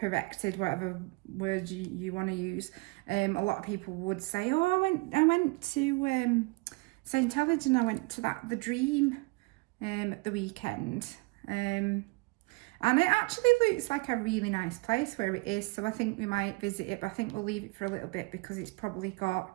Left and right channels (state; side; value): quieter; left; 26.9 dB